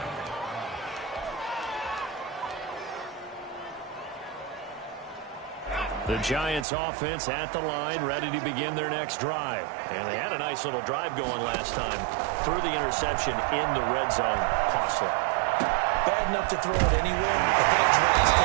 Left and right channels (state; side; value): drops out; left; at 6.7 s